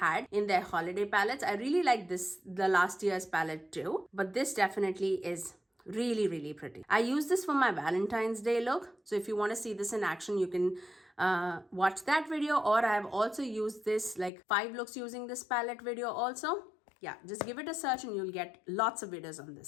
in their holiday palettes. I really like this, the last year's palette too, but this definitely is really pretty. I use this for my Valentine's Day look. So if you want to see this in action, you can watch that video, or I have also used this like 5 looks using this palette video also. Yeah, just give it a search and you'll get lots of videos on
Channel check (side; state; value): right; drops out; at 14.3 s